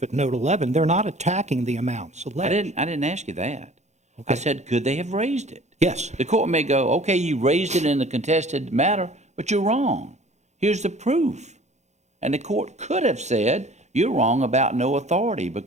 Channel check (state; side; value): late; left; 0.33 ms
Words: at note 11, they're not attacking the amounts alleged. I didn't ask you that. Okay. I said, could they have raised it? Yes. The court may go, okay, you raised it in the contested matter, but you're wrong. Here's the proof. And the court could have said, you're wrong about no authority